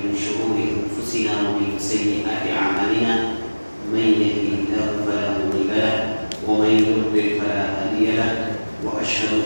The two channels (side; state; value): both; inverted; correlation -1.00